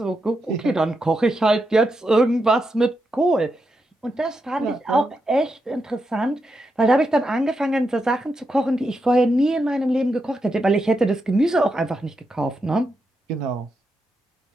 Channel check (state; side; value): normal; both; correlation 0.85